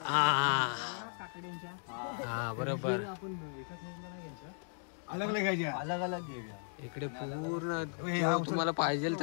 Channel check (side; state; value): right; silent; digital silence